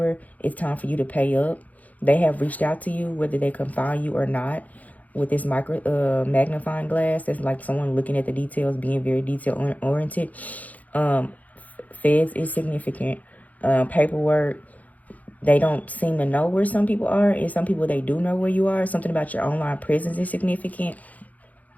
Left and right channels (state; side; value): late; right; 0.076 ms